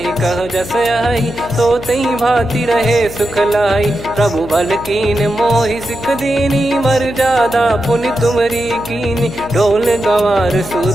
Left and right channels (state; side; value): noise; left; hum, 13 dB below the sound